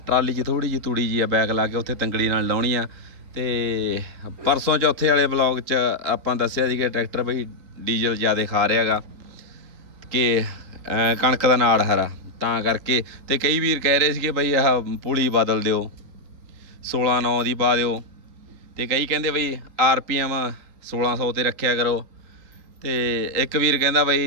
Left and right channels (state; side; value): late; left; 3.9 ms